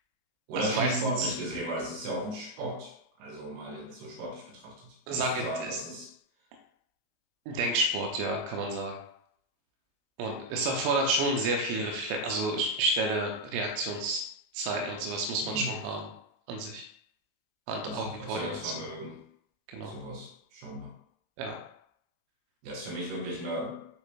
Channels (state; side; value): late; left; 19 ms